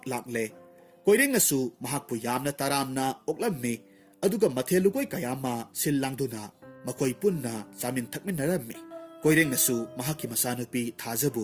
लाकले कोइरेंगनसु महाकपु यामना तारामना ओक्लम्मि अदुगा मथेलुगोय कयामा सिल्लांगदुना मकोई पुन्ना chowmein थकमिनरम्मि कोइरेंगनसु महाकी मसानुपी थाजबु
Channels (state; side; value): identical; both; correlation 1.00